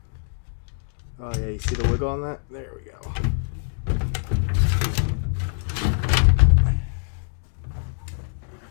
Oh yeah, you see the wiggle on that? There we go.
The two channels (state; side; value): silent; right; 58 dB below the other